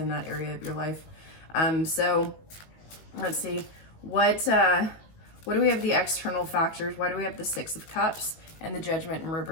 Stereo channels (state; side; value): late; right; 19 ms